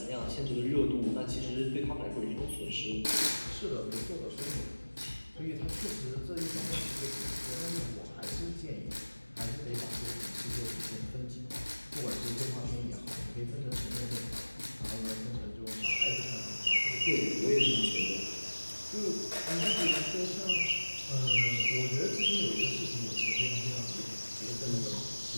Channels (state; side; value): inverted; both; correlation -1.00